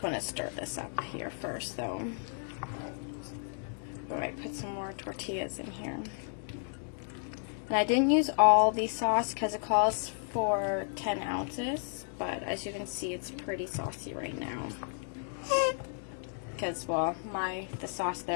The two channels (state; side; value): silent; right; 56 dB below the other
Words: want to stir this up here first, though. Alright, put some more tortillas in here. And I didn't use all the sauce because it calls for 10 ounces, but as you can see, it's pretty saucy right now. Because, well, the sauce